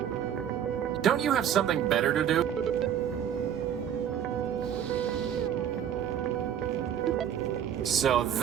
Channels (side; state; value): left; quieter; 9.3 dB